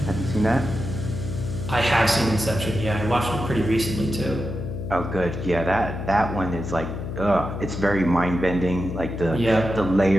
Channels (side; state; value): left; noise; hum, 6 dB below the sound